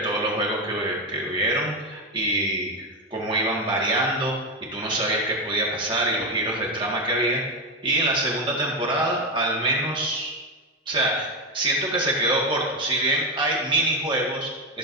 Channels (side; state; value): both; normal; correlation 0.11